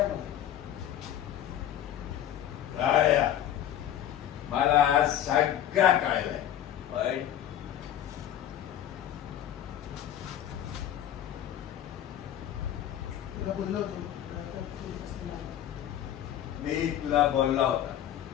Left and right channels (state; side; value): quieter; right; 11.1 dB